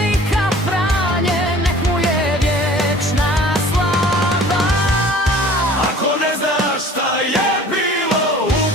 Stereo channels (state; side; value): normal; both; correlation 0.47